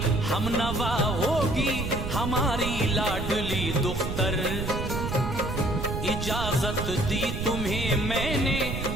हमनवा होगी हमारी लाडली दुख्तर, इजाजत दी तुम्हें मैंने,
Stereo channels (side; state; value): right; noise; rumble, 4 dB below the sound